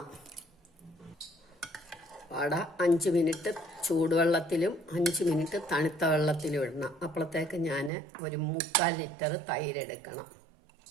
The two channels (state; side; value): drops out; left; at 7.9 s